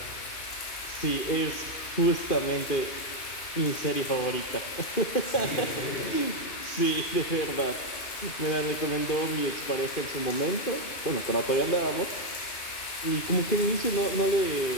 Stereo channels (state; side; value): late; right; 2.5 ms